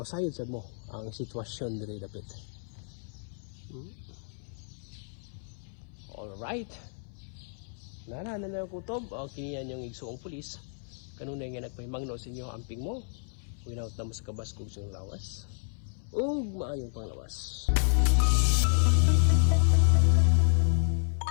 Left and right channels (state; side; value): silent; right; 57 dB below the other